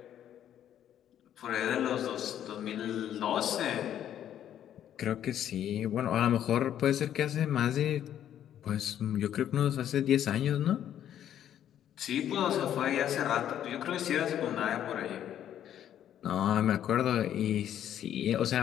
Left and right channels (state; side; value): quieter; right; 10.6 dB